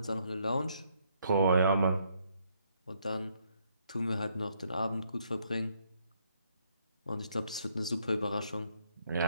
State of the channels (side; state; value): both; inverted; correlation -0.71